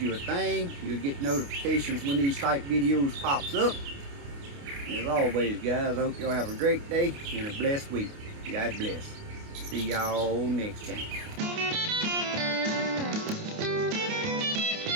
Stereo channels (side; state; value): left; late; 29 ms